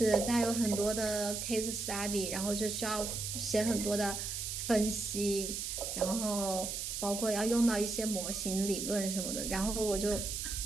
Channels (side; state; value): right; noise; hiss, 4 dB below the sound